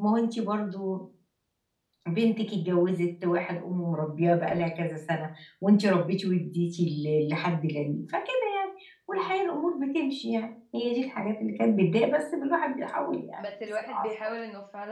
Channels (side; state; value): both; identical; correlation 1.00